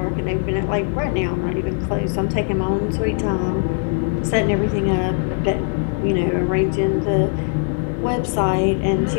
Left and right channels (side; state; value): right; silent; 61 dB below the other